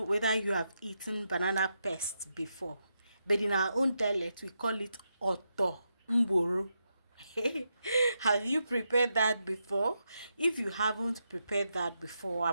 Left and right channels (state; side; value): inverted; both; correlation -0.84